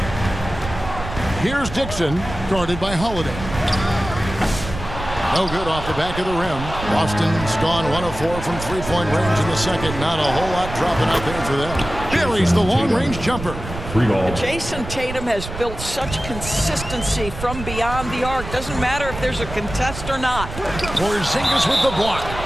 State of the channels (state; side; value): noise; right; rumble, 9 dB below the sound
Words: Here's Dixon, guarded by Holiday. No good off the back of the rim. Boston's gone 1 of 4 from three-point range in the second. Not a whole lot dropping out there for them. Buries the long-range jumper. 3 ball. Jason Tatum has built such consistency from beyond the arc. Doesn't matter if there's a contest or not. Porzingis with the block.